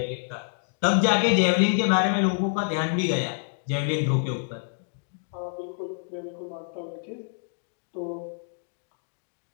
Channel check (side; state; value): right; silent; digital silence